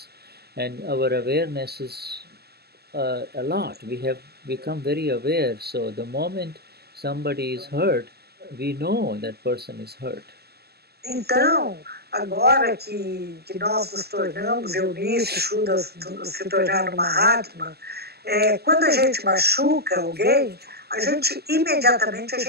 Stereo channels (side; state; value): left; late; 0.46 ms